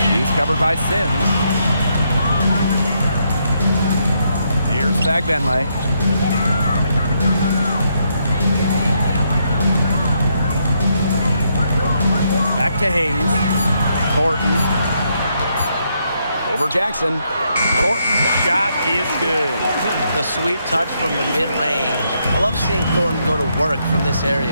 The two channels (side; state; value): both; inverted; correlation -0.76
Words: She's covered by Sims. Here's Fagbenle. Back to Hayes. Thornton. Over Jackson. Thornton's shot is good. The sweet touch from the mid-range. I love seeing Thornton go to work from this